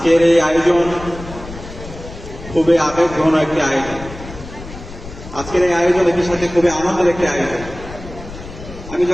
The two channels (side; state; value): left; noise; rumble, 14 dB below the sound